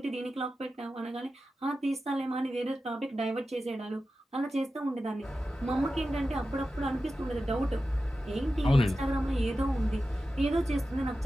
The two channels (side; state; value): both; normal; correlation 0.93